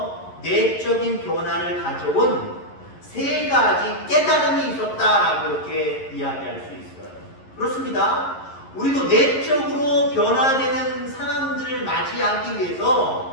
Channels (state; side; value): late; right; 11 ms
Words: 내적인 변화를 가져온 세 가지 깨달음이 있었다라고 이렇게 이야기할 수 있어요. 그렇습니다. 우리도 내적으로 변화되는 상황들을 맞이하기